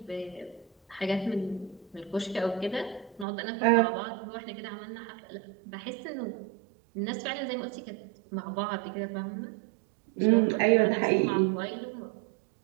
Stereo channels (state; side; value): drops out; left; at 3.2 s